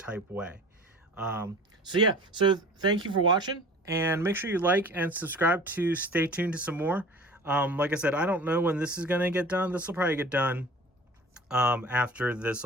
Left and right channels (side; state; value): both; normal; correlation 0.43